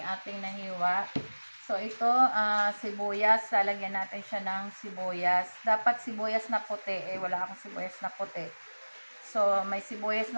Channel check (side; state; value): both; inverted; correlation -1.00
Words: ating nahiwa. So, ito, sibuyas. Lalagyan natin siya ng sibuyas. Dapat sibuyas na puti. Wala akong sibuyas na puti. So, may sibuyas